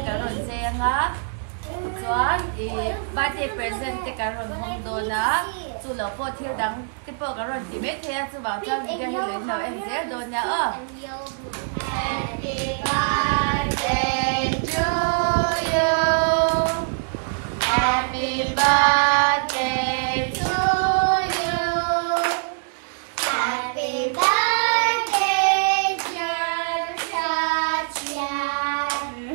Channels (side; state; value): left; silent; digital silence